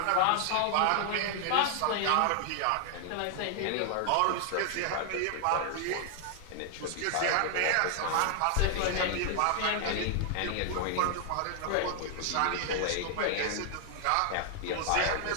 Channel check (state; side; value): different; both; correlation 0.00